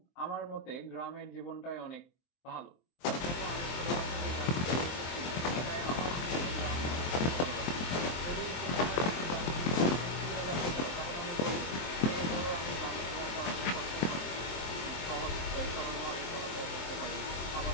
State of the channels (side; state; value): right; late; 23 ms